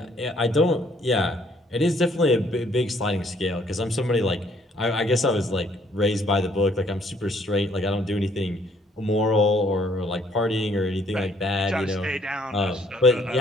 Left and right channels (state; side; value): normal; both; correlation 0.65